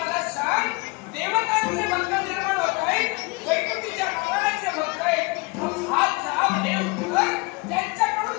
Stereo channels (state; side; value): quieter; right; 27.5 dB